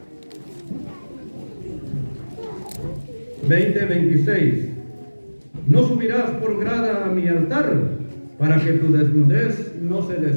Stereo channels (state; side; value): inverted; both; correlation -1.00